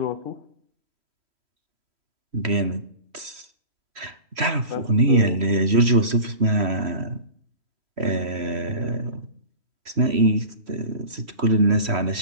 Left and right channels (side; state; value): left; late; 3.1 ms